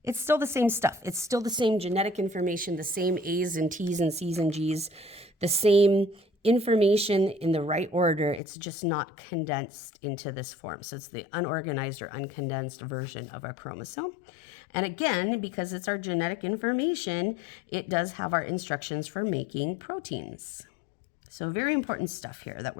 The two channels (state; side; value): drops out; right; at 8.4 s